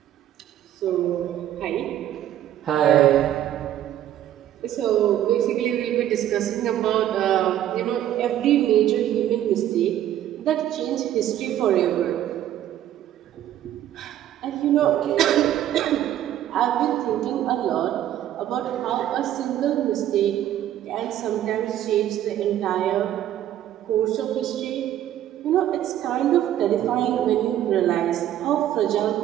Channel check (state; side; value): quieter; left; 11.9 dB